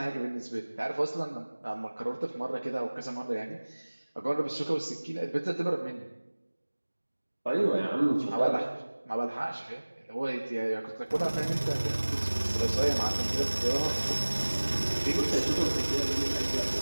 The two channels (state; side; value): inverted; both; correlation -1.00